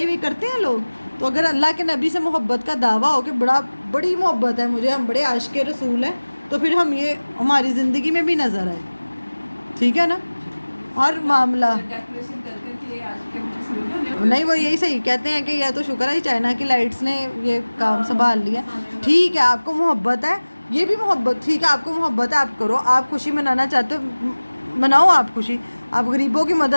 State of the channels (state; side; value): inverted; both; correlation -1.00